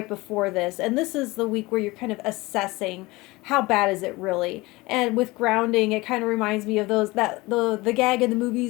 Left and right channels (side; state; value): right; quieter; 21.7 dB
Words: before this. And this is the week where you're kind of assessing how bad is it really. And with grounding, it kind of reminds me of the gag in the